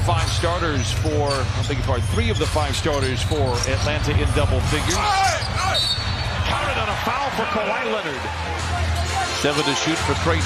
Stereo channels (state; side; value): identical; both; correlation 1.00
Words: starters for Atlanta in double figures. Counted on a foul for Kawhi Leonard. 7 to shoot for